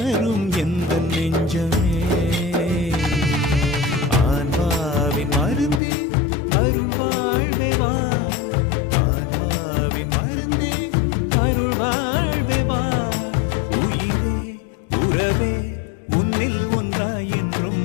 எந்த நெஞ்சமே. ஆன்மாவின் மருந்தே அருள் வாழ்வே வா, ஆன்மாவின் மருந்தே அருள் வாழ்வே வா. உயிரே உறவே உன்னில் ஒன்றாய் என்றும்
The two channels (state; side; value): drops out; right; at 5.8 s